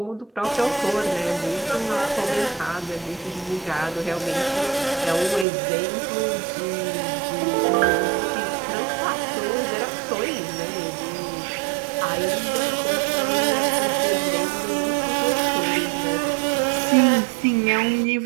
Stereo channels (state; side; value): drops out; left; at 5.5 s